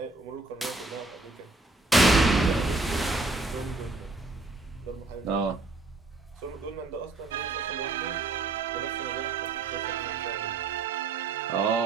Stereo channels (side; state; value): left; quieter; 3.3 dB